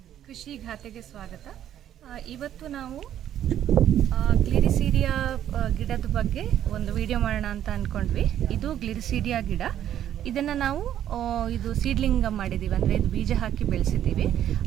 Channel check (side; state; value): left; quieter; 10.9 dB